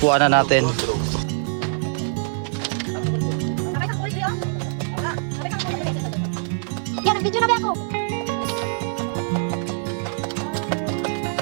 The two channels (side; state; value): left; silent; digital silence